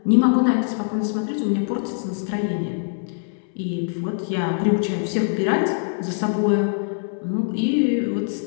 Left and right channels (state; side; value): silent; right; 63 dB below the other